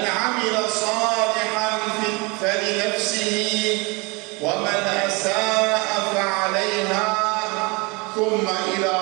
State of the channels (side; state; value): left; quieter; 28.0 dB